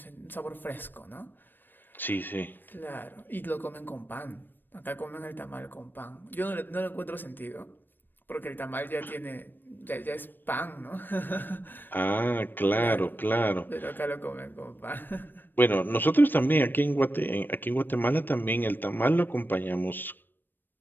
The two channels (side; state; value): right; late; 0.093 ms